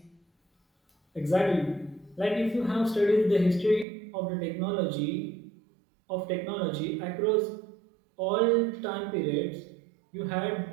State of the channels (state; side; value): drops out; left; at 3.9 s